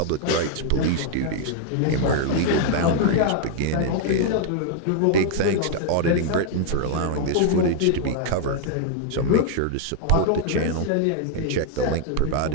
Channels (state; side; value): different; both; correlation 0.00